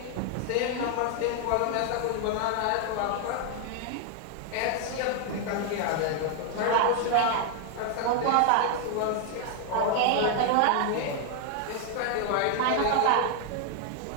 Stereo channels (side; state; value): both; different; correlation 0.00